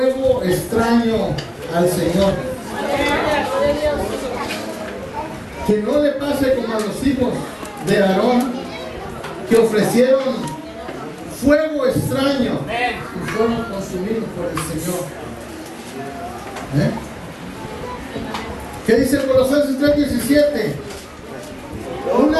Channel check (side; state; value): both; identical; correlation 1.00